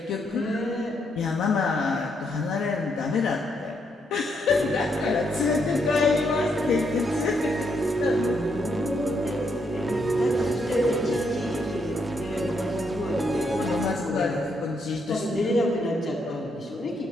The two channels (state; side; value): normal; both; correlation 0.77